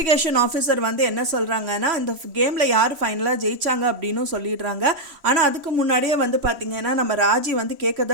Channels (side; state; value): left; late; 3.1 ms